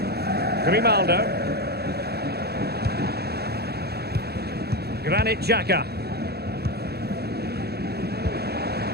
Grimaldo. Granit Xhaka.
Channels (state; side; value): late; left; 0.47 ms